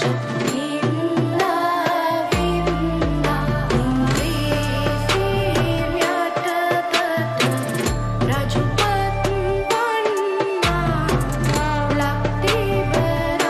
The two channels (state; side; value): identical; both; correlation 1.00